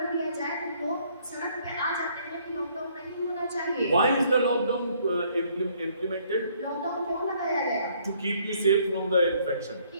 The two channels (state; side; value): inverted; both; correlation -0.64